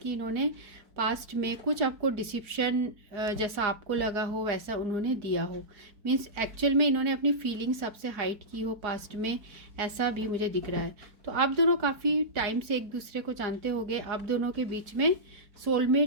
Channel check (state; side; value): late; left; 4.5 ms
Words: इन्होंने पास्ट में कुछ आपको डिसिप्शन जैसा आपको लगा हो वैसा उन्होंने दिया हो। मीन्स एक्चुअल में इन्होंने अपनी फीलिंग्स आपसे हाइड की हो पास्ट में, ऐसा भी मुझे दिख रहा है। तो आप दोनों काफ़ी टाइम से एक दूसरे को जानते होंगे, आप दोनों के बीच में